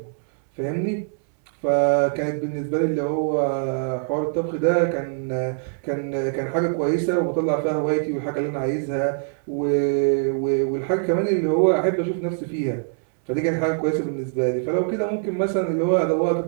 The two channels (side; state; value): left; silent; 63 dB below the other